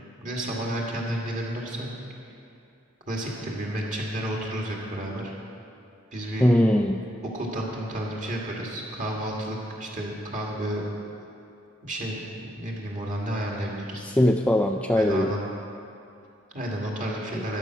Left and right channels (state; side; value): normal; both; correlation 0.78